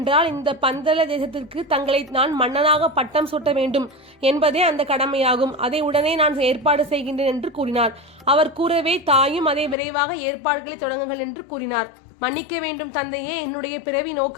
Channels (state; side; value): drops out; right; at 9.8 s